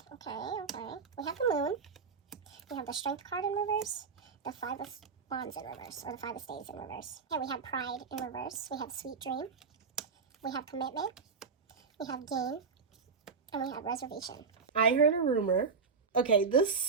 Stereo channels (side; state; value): left; quieter; 5.2 dB